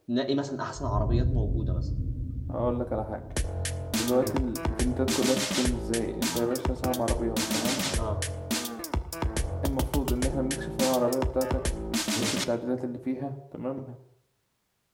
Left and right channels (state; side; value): identical; both; correlation 1.00